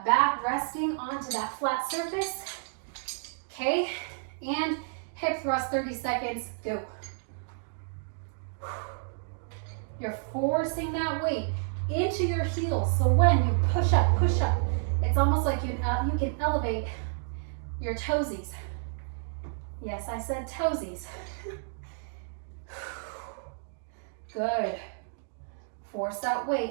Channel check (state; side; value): silent; left; digital silence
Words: back, resting onto that flat surface. Okay. And hip thrust, 30 seconds. Go. You're forcing that weight into your heels. So when you push up, it's almost like you can elevate your toesies. Yes, I said toesies. Good. Force that